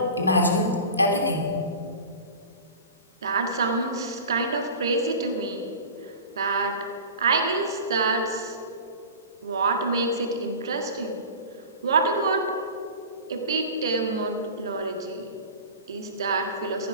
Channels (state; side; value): inverted; both; correlation -0.36